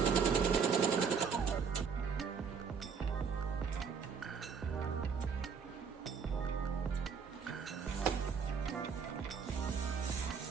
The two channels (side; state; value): left; quieter; 6.1 dB